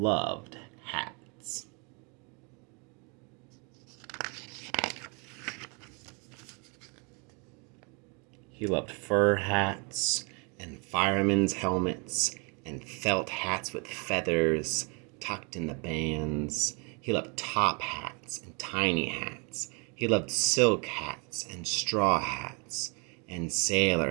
hats. He loved fur hats and firemen's helmets and felt hats with feathers tucked in the bands. He loved top hats and tiny hats. He loved silk hats and straw hats and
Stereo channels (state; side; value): quieter; left; 33.3 dB